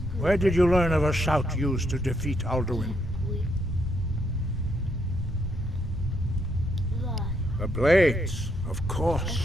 Where did you learn of a shout used to defeat Alduin? The Blades, of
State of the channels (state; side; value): normal; both; correlation 0.76